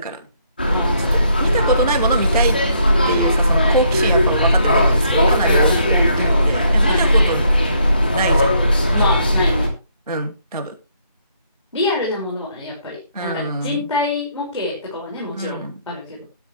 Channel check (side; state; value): both; inverted; correlation -0.70